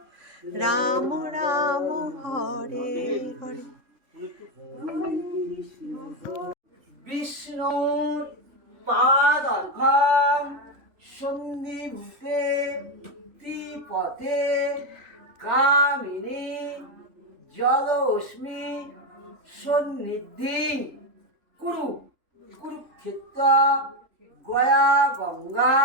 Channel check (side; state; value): left; late; 3.4 ms